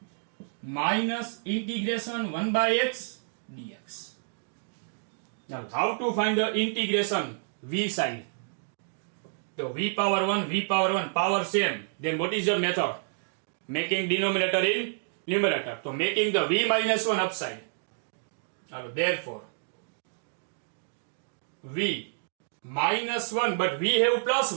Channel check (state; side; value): silent; left; digital silence